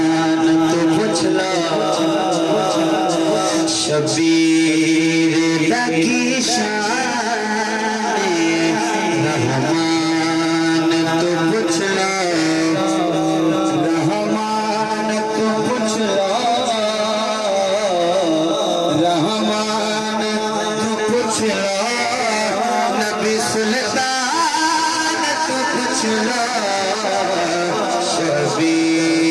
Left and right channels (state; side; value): identical; both; correlation 1.00